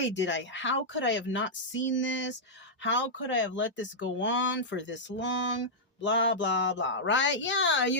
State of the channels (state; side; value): normal; both; correlation -0.09